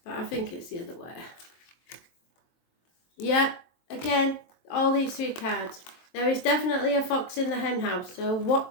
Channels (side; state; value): right; late; 23 ms